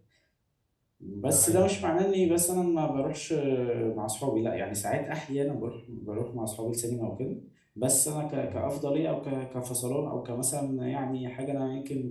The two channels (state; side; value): identical; both; correlation 1.00